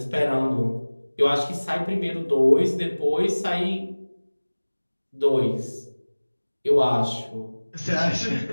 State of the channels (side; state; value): both; inverted; correlation -1.00